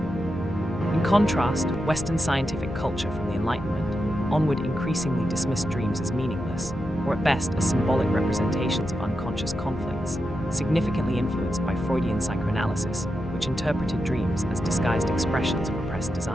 contrast, Western scientific culture from the Enlightenment onward increasingly dismissed dreams as meaningless, or at best as symbolic representations of unconscious conflicts, significantly influenced by Freudian psychoanalysis, which interpreted dreams as disguised expressions of repressed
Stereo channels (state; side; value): normal; both; correlation 0.88